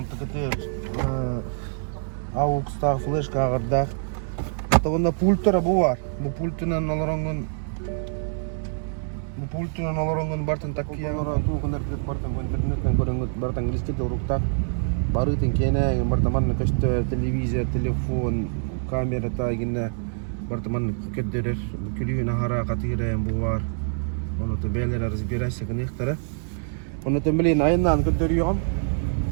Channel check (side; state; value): left; silent; digital silence